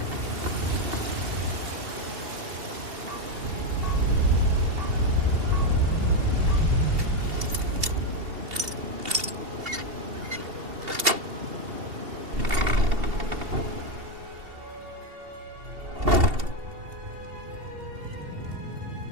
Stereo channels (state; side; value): late; left; 2.7 ms